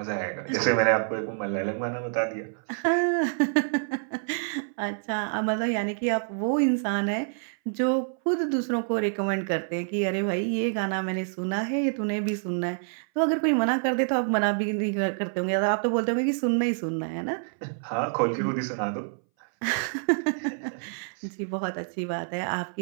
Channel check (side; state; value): left; silent; 60 dB below the other